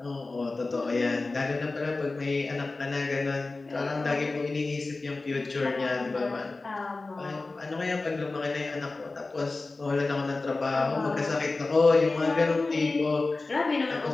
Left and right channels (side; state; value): right; quieter; 3.5 dB